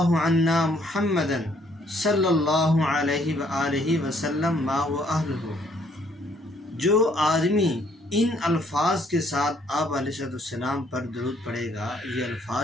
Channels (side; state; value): both; normal; correlation 0.66